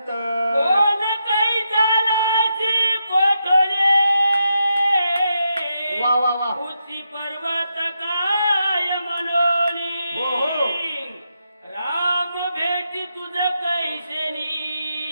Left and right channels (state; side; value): inverted; both; correlation -0.84